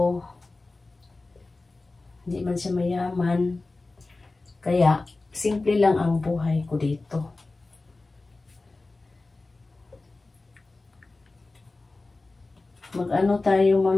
hindi man siya mayaman. Kaya, simple lang ang buhay ko dito. Mag-ano tayo,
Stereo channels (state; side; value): quieter; right; 3.3 dB